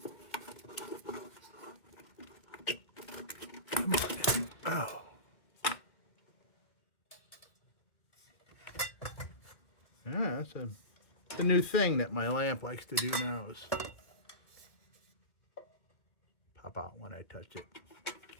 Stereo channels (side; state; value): right; late; 2.2 ms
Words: Oh. Yeah, that's the new thing that my lamp likes to do now is pop out when I touch it.